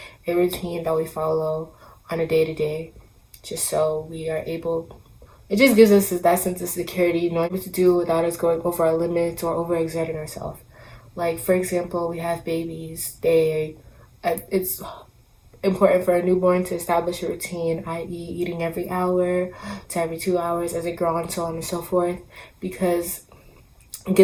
a routine that we follow on a day-to-day, just so we are able, it just gives us that sense of security, knowing what to do without us going over our limits or overexerting ourselves. Like, for example, we have babies. It's important for a newborn to establish a routine, i.e. eating every hour to every 2 hours as they grow, and so on and so forth, because it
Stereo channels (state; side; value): identical; both; correlation 1.00